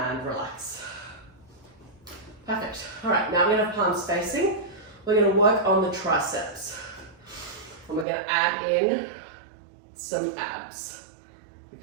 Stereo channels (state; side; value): drops out; left; at 8.1 s